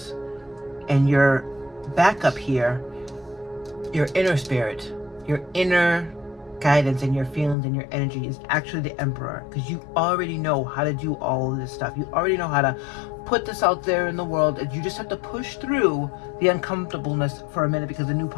and your backup here, your inner spirit, your inner guidance and your feelings and your energy is actually the Emperor, because you already know how to do all of this stuff. You already know how to put this out there in the world, and you just have to push through the uncomfortableness for a minute because the new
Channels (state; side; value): drops out; right; at 7.6 s